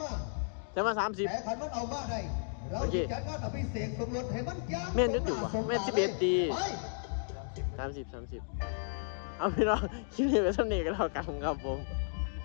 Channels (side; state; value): right; silent; digital silence